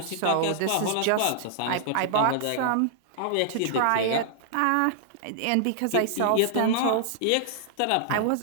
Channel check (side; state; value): both; different; correlation -0.01